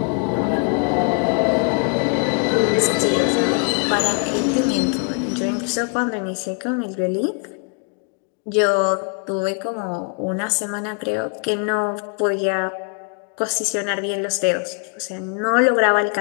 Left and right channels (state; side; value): quieter; right; 36.8 dB